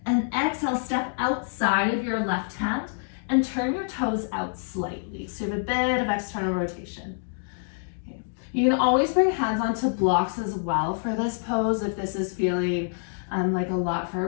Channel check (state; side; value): silent; right; digital silence